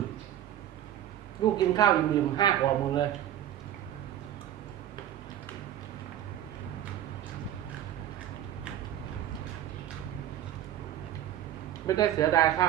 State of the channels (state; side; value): quieter; left; 11.6 dB